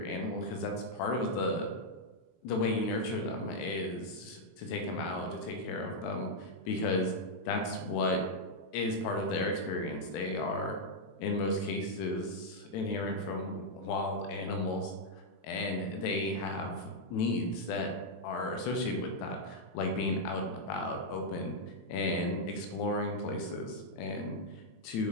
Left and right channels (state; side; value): late; right; 18 ms